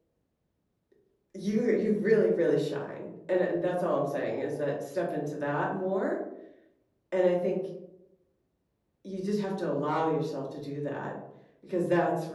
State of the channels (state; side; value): identical; both; correlation 1.00